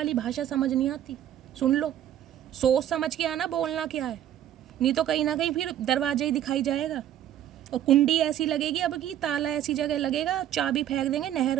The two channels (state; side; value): quieter; left; 11.4 dB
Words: भाषा समझ नहीं आती। सुन लो, सोच समझ के आना बोलना क्या है, नहीं तो कहीं ना कहीं फिर दरवाजा ही दिखाई जाएगा और कुंडी ऐसी लगेगी अब की, ताला ऐसी जगह लगेगा, चाबी फेंक देंगे नहर